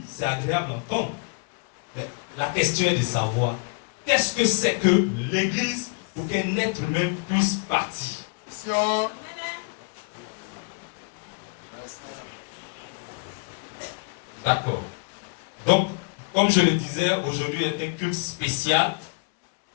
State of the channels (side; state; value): right; quieter; 34.3 dB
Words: c'est agréable à entendre. Mais la question est de savoir, qu'est-ce que c'est que l'église pour qu'un être humain puisse partir? D'accord. Donc, comme je le disais, aujourd'hui est un culte spécial.